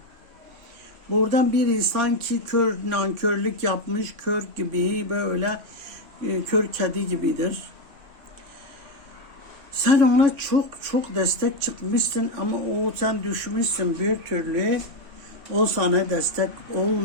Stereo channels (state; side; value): late; left; 3.5 ms